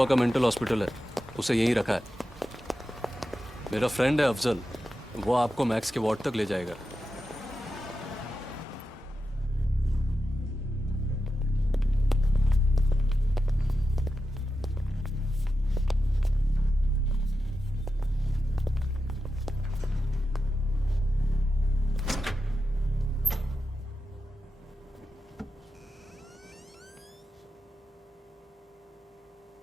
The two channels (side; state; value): both; normal; correlation 0.90